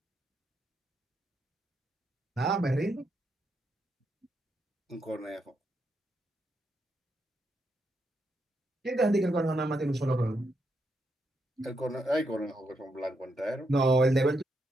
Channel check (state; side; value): normal; both; correlation 0.81